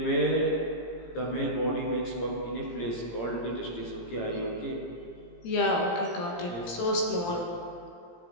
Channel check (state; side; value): late; right; 17 ms